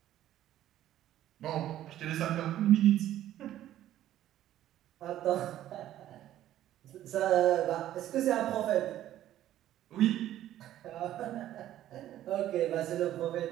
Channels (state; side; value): quieter; left; 12.8 dB